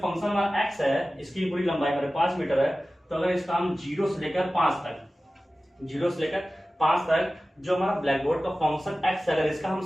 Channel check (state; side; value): normal; both; correlation 0.96